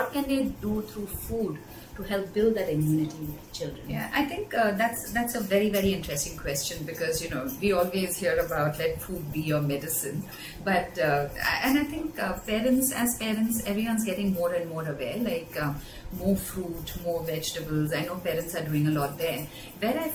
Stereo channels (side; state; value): both; identical; correlation 1.00